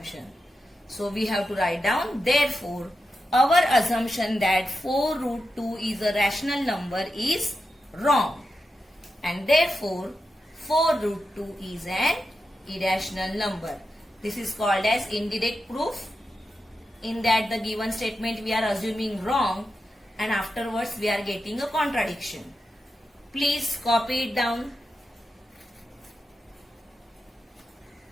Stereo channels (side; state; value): both; normal; correlation 0.89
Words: So we have to write down, therefore, our assumption that 4 root 2 is a rational number is wrong. And therefore 4 root 2 is an irrational number. This is called as indirect proof. In that the given statement we are assuming wrong, and afterwards we are getting a contradiction. Please copy it down.